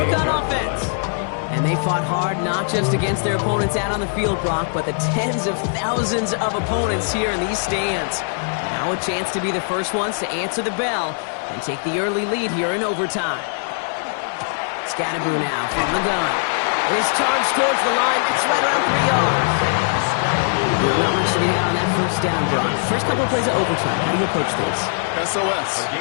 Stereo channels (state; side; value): silent; right; 65 dB below the other